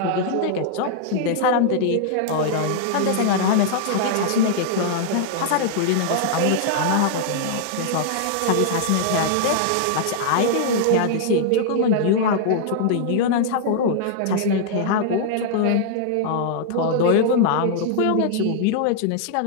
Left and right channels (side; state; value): both; different; correlation -0.01